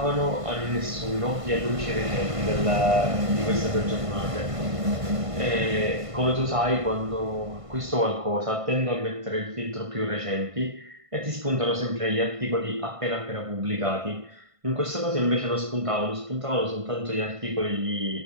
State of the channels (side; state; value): left; late; 1.5 ms